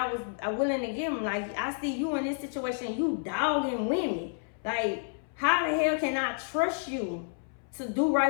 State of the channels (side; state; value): right; silent; 58 dB below the other